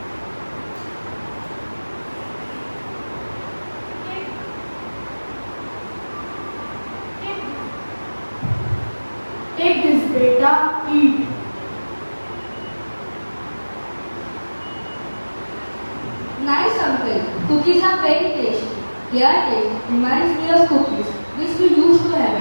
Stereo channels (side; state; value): both; inverted; correlation -1.00